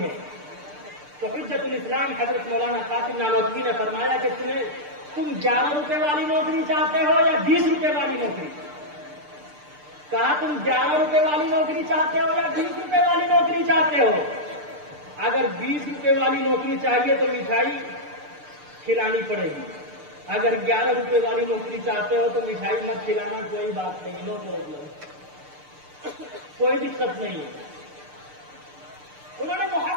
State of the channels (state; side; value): late; left; 6.7 ms